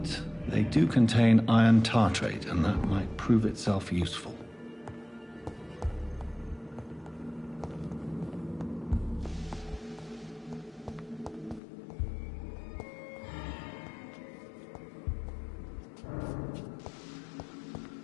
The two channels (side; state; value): right; drops out; at 11.6 s